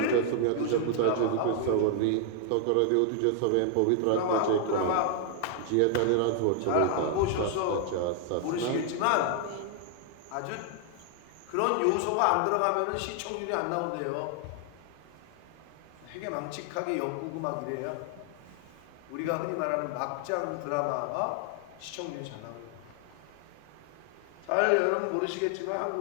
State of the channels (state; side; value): different; both; correlation 0.00